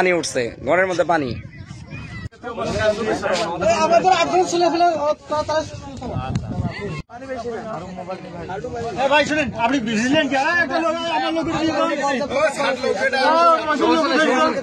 উঠছে, ঘরের মধ্যে পানি। ভাই শুনেন, আপনি বুঝলেন কি? একটা লোক আমার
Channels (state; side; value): identical; both; correlation 1.00